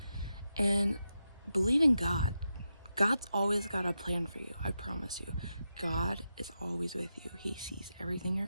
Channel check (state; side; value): inverted; both; correlation -0.87